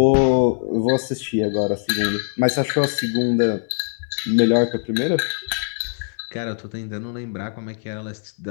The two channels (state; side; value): silent; right; digital silence